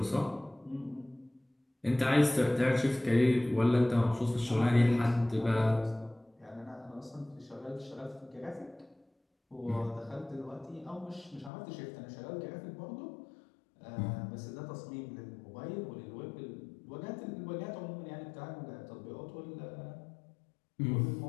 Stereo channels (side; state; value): right; drops out; at 11.5 s